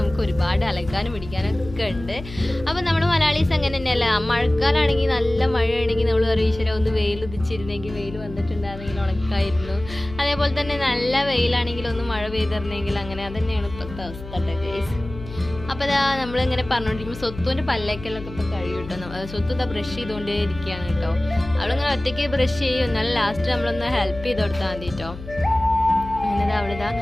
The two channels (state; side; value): noise; left; hum, 13 dB below the sound